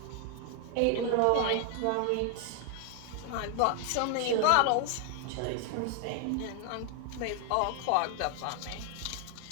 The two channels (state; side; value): different; both; correlation 0.00